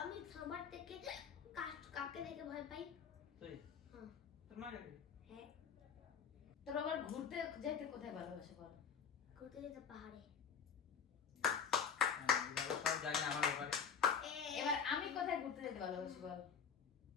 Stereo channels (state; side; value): quieter; right; 6.8 dB